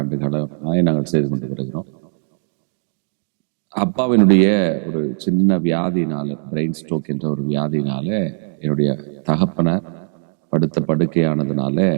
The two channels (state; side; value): silent; left; 66 dB below the other